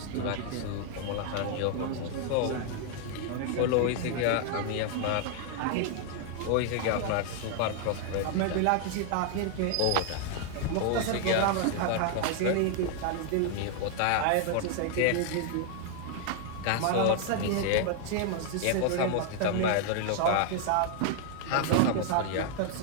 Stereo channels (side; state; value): both; different; correlation 0.00